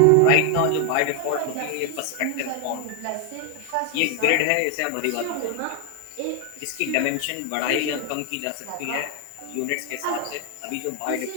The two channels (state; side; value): different; both; correlation 0.00